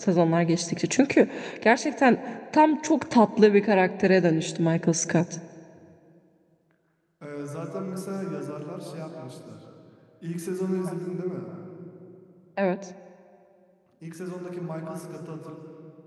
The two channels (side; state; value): both; identical; correlation 1.00